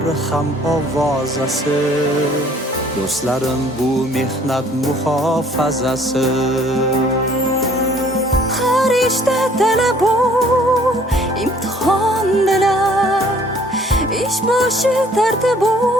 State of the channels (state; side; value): normal; both; correlation 0.57